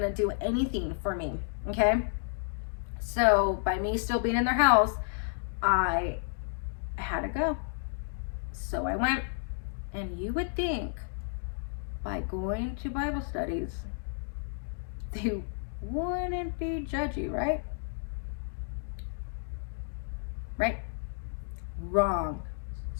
to do anything for me. Okay? So by me still being in their house, I had to go. So I went. And you would think by going to Bible studies, they wouldn't be judgy, right? Right? Wrong.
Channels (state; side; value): silent; right; digital silence